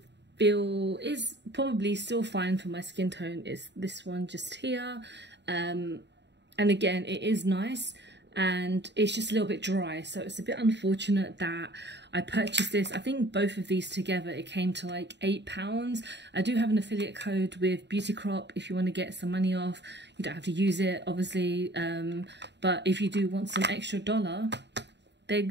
feel is probably still fine for my skin tone. Is this one just here. And again, it is nice and it's just a little bit dry, so it's a bit unfortunate that I purchased this. I think both of these together it came to like £8. I do have an affiliate code with Beauty Crop if you want to get some money off. You don't have to use it, obviously, but if you do want some extra dollar, they're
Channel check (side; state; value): left; late; 0.51 ms